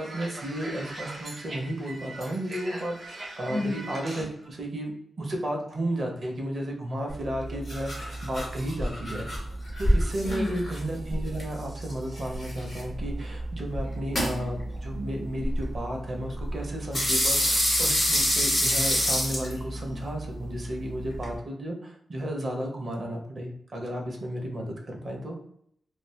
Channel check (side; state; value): both; normal; correlation 0.89